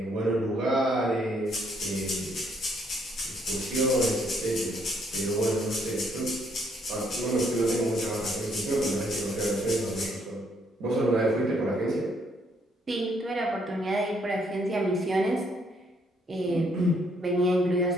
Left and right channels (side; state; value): both; normal; correlation 0.69